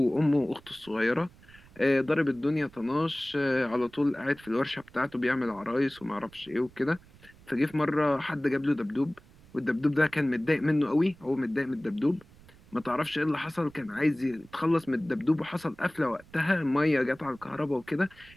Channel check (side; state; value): right; noise; rumble, 25 dB below the sound